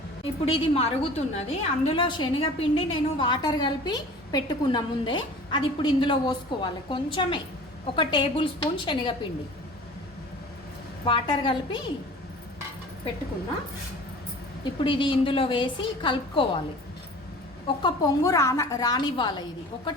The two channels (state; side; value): normal; both; correlation 0.42